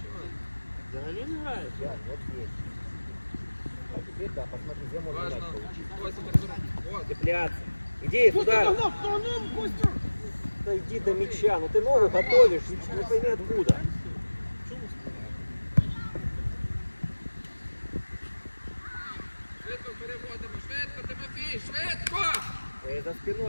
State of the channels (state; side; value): inverted; both; correlation -1.00